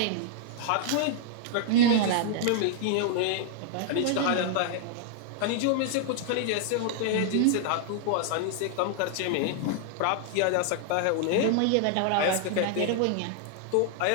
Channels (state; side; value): different; both; correlation 0.00